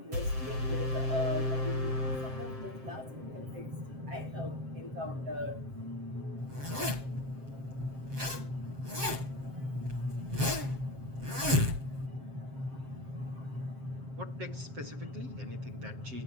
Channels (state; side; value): late; left; 7.6 ms